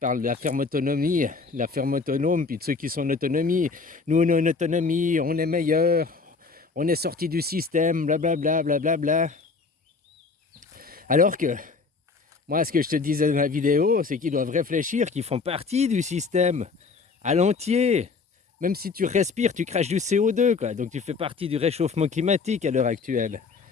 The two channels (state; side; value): quieter; right; 4.6 dB